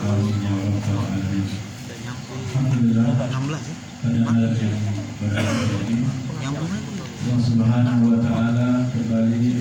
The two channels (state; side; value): identical; both; correlation 1.00